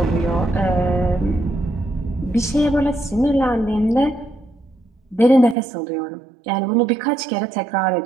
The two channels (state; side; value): drops out; left; at 5.6 s